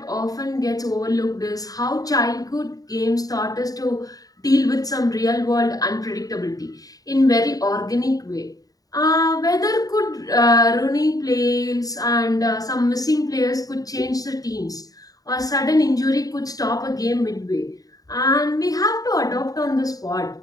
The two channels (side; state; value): right; late; 0.18 ms